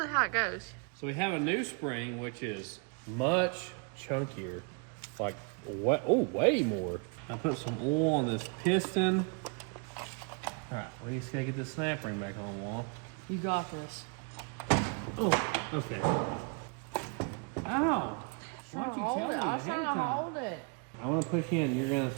how it goes. So we have a new spring, which is much chunkier. Like, way more. I put some oil on this piston. All right, we just gotta get this snap ring back on, Wall. You got this. Oh, okay. Ow! Why'd you tell me I was ahead trying of to time? hold it. I'm gonna push in. You're gonna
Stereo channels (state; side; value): quieter; left; 35.4 dB